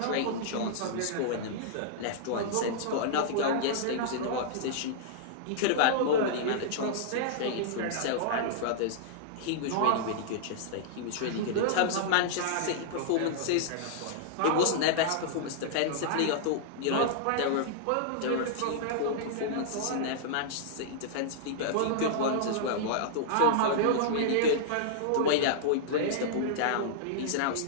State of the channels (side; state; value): both; different; correlation -0.02